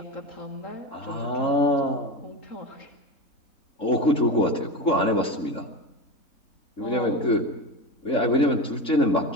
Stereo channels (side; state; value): right; late; 3.6 ms